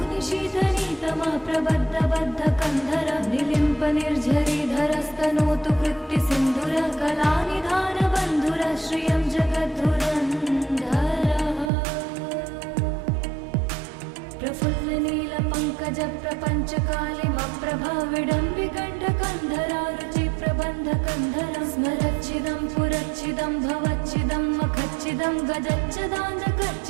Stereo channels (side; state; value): left; drops out; at 11.7 s